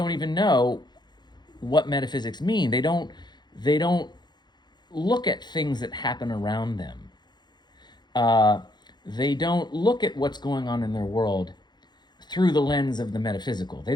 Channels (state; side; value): late; right; 0.21 ms